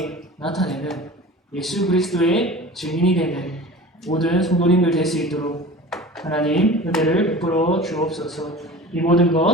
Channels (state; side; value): normal; both; correlation 0.38